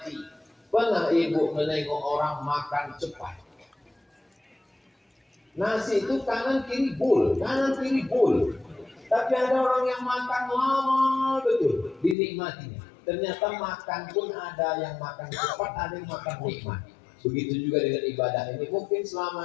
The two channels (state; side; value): drops out; right; at 12.2 s